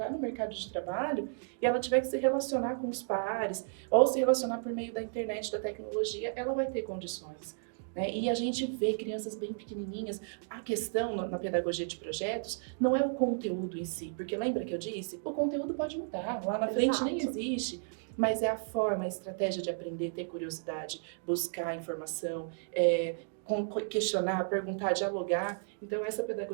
no mercado de trabalho e ela tiver que se relacionar com os pares ou se relacionar por meio da internet, da tecnologia, ela vai ter condições. né? E a gente vê crianças bem pequenininhas. A questão na pedagogia de projetos não é o conteúdo em si, porque lembra que eu disse? O conteúdo pode mudar, lá na frente nem existe. Mas é a forma, a estratégia de aprender, ter curiosidade, buscar informação, questionar, perguntar, dialogar. Então, essa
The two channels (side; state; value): left; silent; digital silence